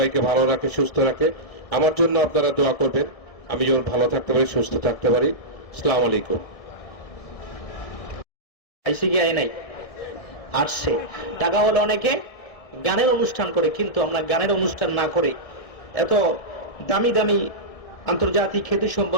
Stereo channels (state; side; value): late; right; 1.7 ms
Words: ভালো রাখে, সুস্থ রাখে। আমার জন্য আপনারা দোয়া করবেন, আমি যেমন ভালো থাকতে পারি, সুস্থ থাকতে পারি। আসসালামু আলাইকুম। আইসি কি আয় নাই? আসছে। টাকা হলো অনেকে গানের অনুষ্ঠান করে, কিন্তু আমরা গানের অনুষ্ঠান না করে এত দামি দামি আন্তর্জাতিক খ্যাতি